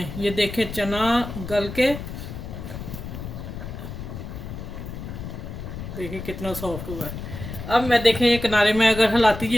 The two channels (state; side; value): noise; left; rumble, 9 dB below the sound